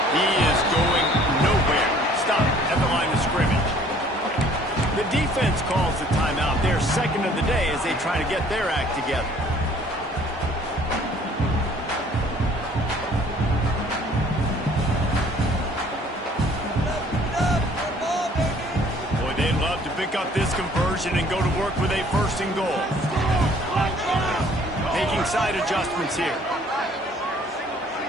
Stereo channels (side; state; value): both; normal; correlation 0.56